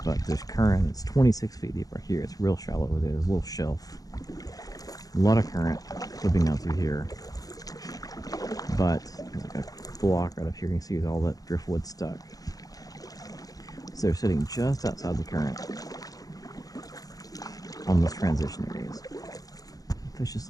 But there's current. It's 26 feet deep right here. It's real shallow over there. There's a little shelf. A lot of current flipping down through here. But there's like a block right up here. You can see with all that driftwood stuck. So they're sitting just outside the current on those transition areas. Fish this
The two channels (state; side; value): late; right; 0.18 ms